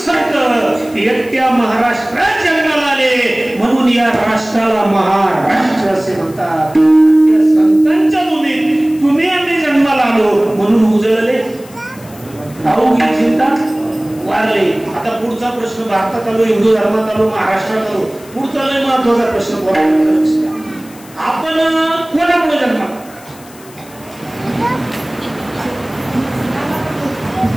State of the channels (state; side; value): noise; left; hiss, 22 dB below the sound